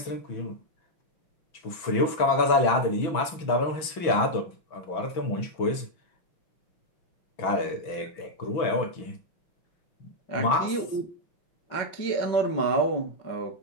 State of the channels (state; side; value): late; right; 6.1 ms